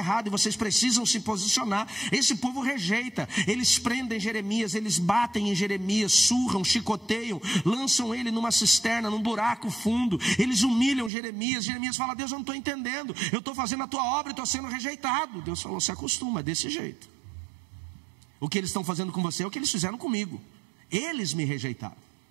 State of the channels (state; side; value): drops out; left; at 11.1 s